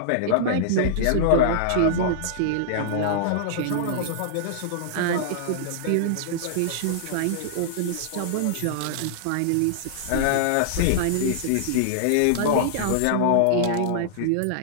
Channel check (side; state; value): both; different; correlation -0.02